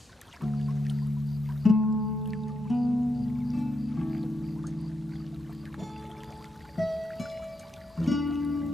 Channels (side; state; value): both; normal; correlation 0.82